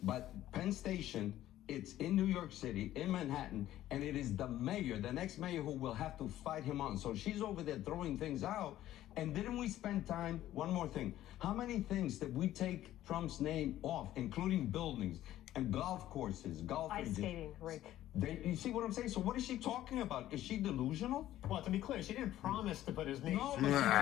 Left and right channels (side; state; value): right; quieter; 13.5 dB